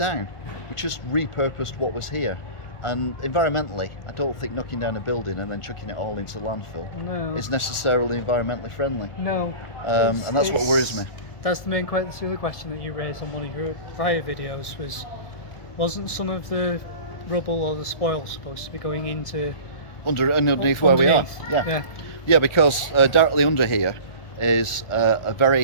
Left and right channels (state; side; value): late; right; 1.4 ms